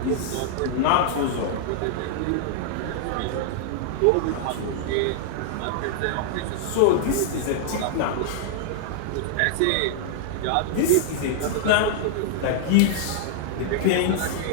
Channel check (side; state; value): both; different; correlation -0.01